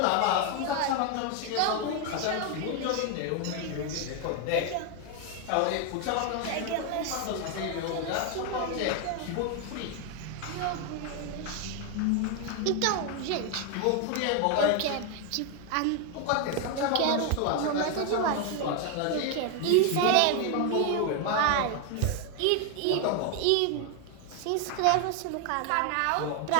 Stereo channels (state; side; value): different; both; correlation 0.01